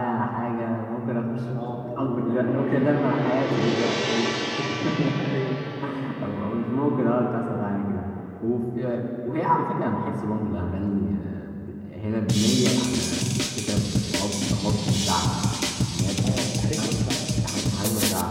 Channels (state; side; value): identical; both; correlation 1.00